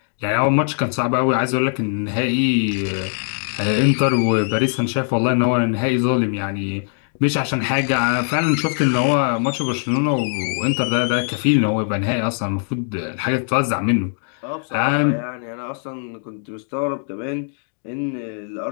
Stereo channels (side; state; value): right; silent; digital silence